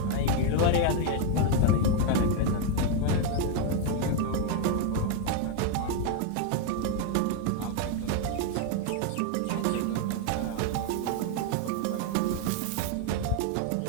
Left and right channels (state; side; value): different; both; correlation 0.01